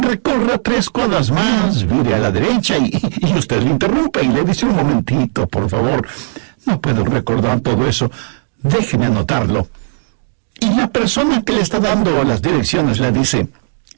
3 cuadras más, vire a la derecha, y usted le interrumpe y le dice, un momentito, por favor, no puedo recordar todo eso, déjeme anotarlo. Y la persona que le está dando las direcciones le dice,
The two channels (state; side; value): silent; left; digital silence